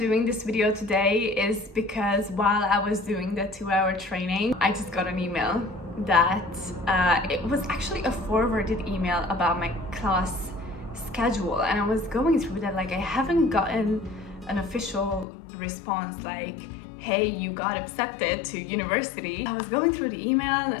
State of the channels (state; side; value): drops out; right; at 15.2 s